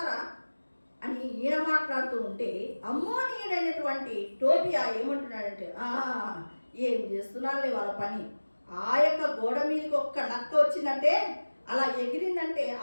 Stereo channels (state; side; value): inverted; both; correlation -1.00